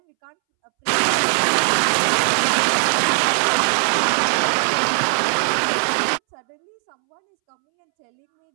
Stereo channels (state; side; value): silent; left; 66 dB below the other